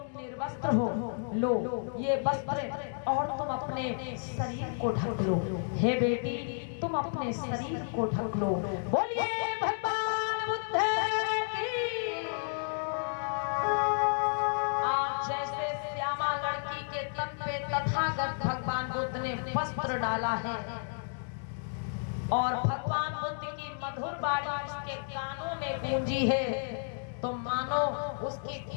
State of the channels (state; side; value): silent; right; digital silence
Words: निर्वस्त्र हो, लो ये वस्त्र और तुम अपने शरीर को ढक लो। हे बेटी, तुम अपने शरीर को ढक लो। बोलिए भगवान बुद्ध की। आज जैसे श्यामा लड़की के तन पे तथागत भगवान बुद्ध ने वस्त्र डाला है और भगवान बुद्ध की मधुर वाणी उसके कानों में गूंजी है, तो मानो उसकी